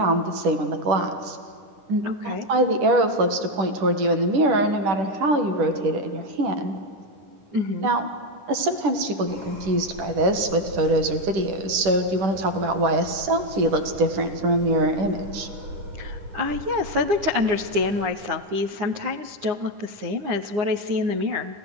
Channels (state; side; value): late; left; 10 ms